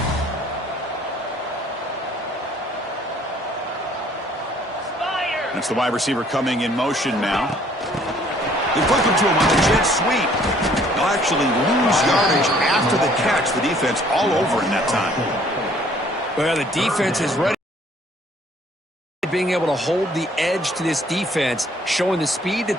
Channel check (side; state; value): both; normal; correlation 0.59